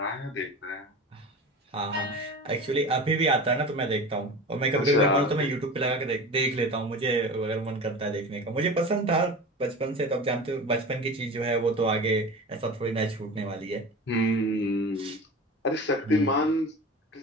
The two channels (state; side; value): normal; both; correlation 0.32